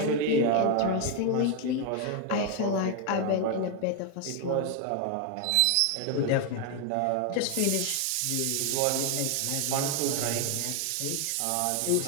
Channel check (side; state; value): both; different; correlation 0.01